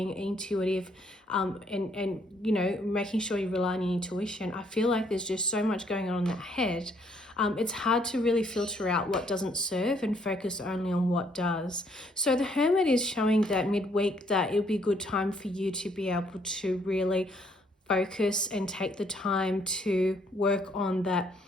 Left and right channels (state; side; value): normal; both; correlation 0.67